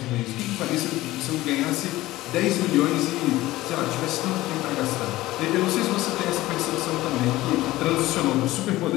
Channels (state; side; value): quieter; right; 17.2 dB